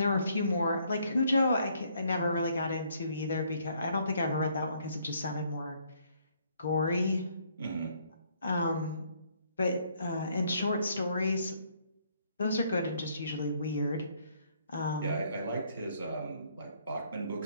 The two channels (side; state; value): both; inverted; correlation -0.68